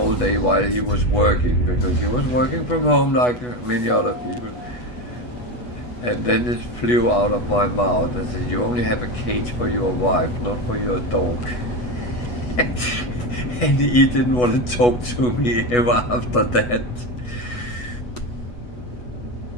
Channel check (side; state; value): right; late; 8.2 ms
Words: day while he was working, because he was working from home like many other people. And then it flew out of my mouth and said, "You only have a cage for your wife, not for your dog." And he didn't want to talk to me ever after that.